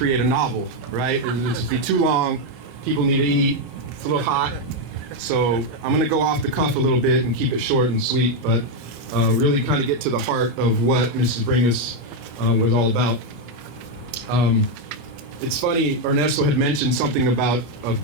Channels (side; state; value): left; late; 25 ms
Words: a novel, right? It'll just be too long. People need to eat. It's a little hot. So I'm going to go off the cuff a little bit and keep it short and sweet, but really kind of get to the heart of what Mrs. Bringas was all about. It's funny, Ernesto had mentioned something about a